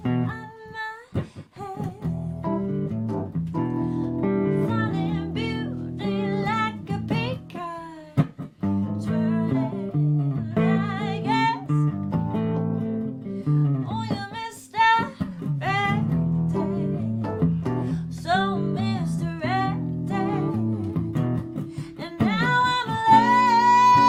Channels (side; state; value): both; identical; correlation 1.00